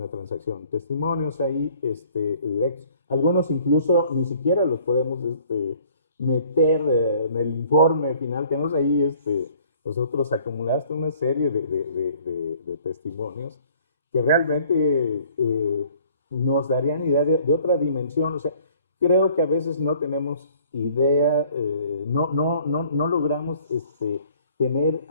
transacción. Testimonios ahí directos. Algunos incluso ni siquiera los podemos meter en el informe final. Tenemos ahí nosotros acumulaste una serie de testimonios que realmente nos darían idea de otra dimensión. O sea, creo que a veces no tenemos idea, no logramos tener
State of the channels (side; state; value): both; inverted; correlation -0.57